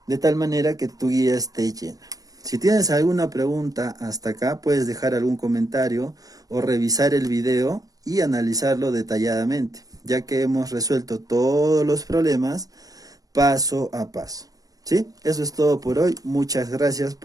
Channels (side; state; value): left; late; 0.18 ms